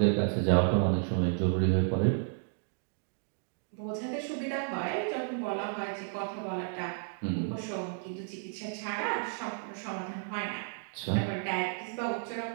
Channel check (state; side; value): silent; left; digital silence